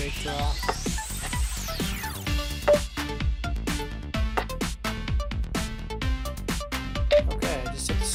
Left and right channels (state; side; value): identical; both; correlation 1.00